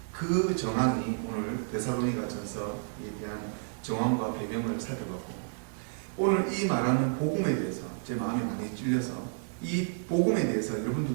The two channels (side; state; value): left; silent; digital silence